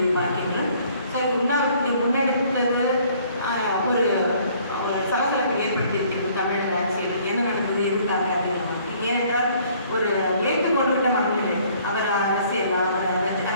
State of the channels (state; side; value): inverted; both; correlation -0.59